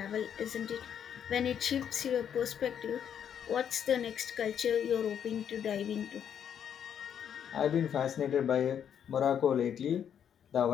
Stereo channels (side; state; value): right; quieter; 8.7 dB